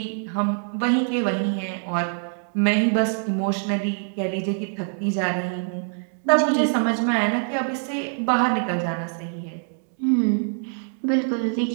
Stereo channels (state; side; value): silent; left; 59 dB below the other